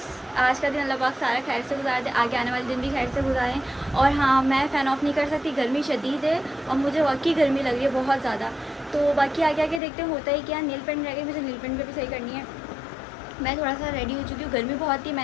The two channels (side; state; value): right; drops out; at 9.8 s